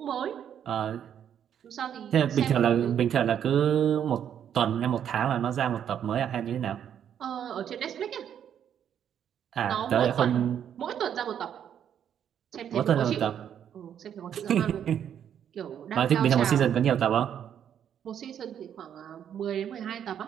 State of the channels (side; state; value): left; quieter; 9.2 dB